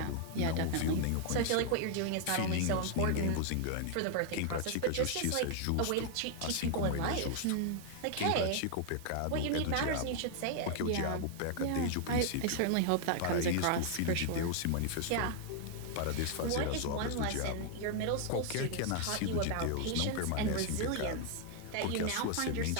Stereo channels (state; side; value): different; both; correlation 0.00